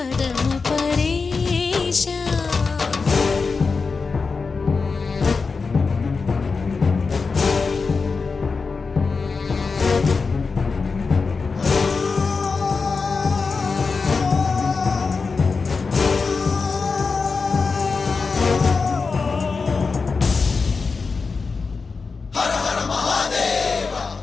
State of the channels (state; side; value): quieter; right; 4.6 dB